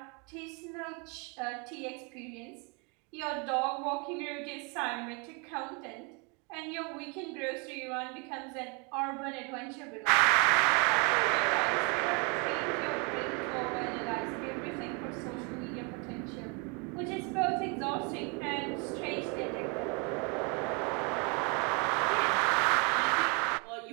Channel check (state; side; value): quieter; left; 32.9 dB